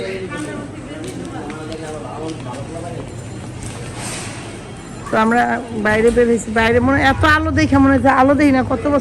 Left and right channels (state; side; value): identical; both; correlation 1.00